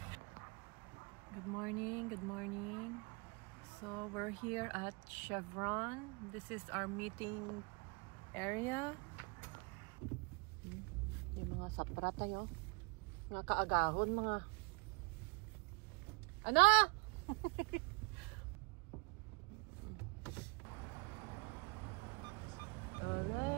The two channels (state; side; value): quieter; left; 30.6 dB